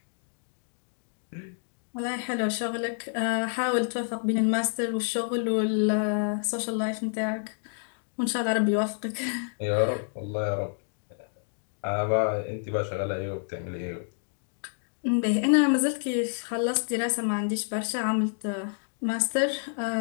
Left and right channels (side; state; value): right; silent; 59 dB below the other